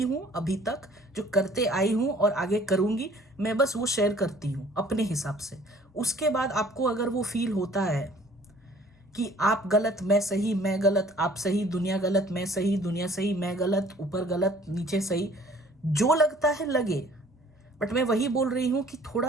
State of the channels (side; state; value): both; normal; correlation 0.54